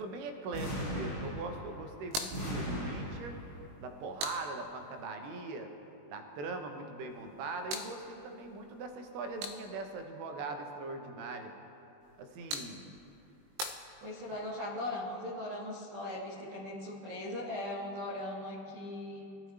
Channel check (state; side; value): late; left; 21 ms